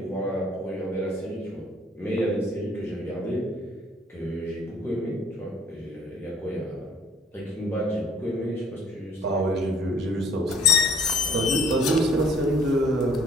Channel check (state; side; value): normal; both; correlation 0.59